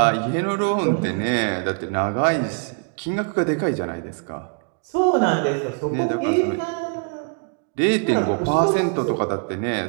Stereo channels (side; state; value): left; quieter; 39.6 dB